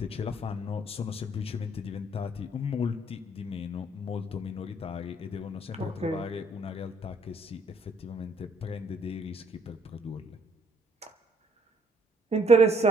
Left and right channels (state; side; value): normal; both; correlation 0.65